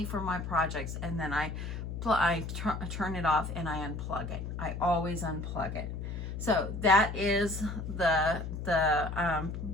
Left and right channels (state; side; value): noise; left; hum, 6 dB below the sound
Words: for my projects, and then I turn it off and I unplug it. I always unplug it. So that is the